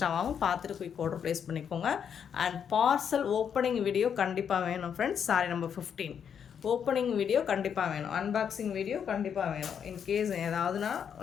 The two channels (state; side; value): quieter; right; 7.8 dB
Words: பார்த்துட்டு குயிக் ஆர்டர் ப்ளேஸ் பண்ணிக்கோங்க. அண்ட் பார்சல் ஓப்பனிங் வீடியோ கண்டிப்பாக வேணும் friends. Sari number 15 opening video கண்டிப்பாக வேணும். அன்பாக்சிங் வீடியோ கண்டிப்பாக வேணும். இன்கேஸ் ஏதாவதுனா